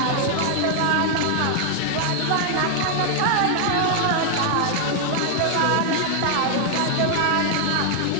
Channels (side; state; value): both; different; correlation 0.00